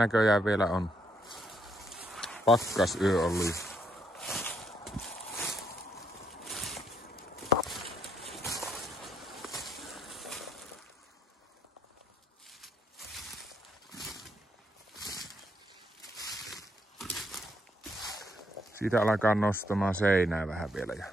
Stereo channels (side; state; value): both; normal; correlation 0.74